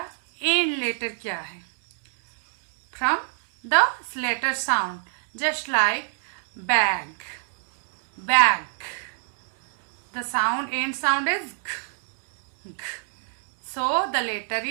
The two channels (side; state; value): left; silent; digital silence